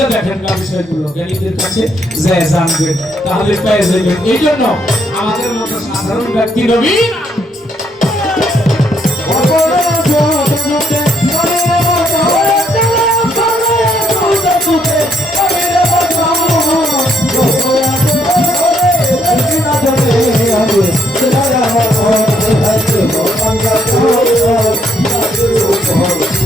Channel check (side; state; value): both; normal; correlation 0.72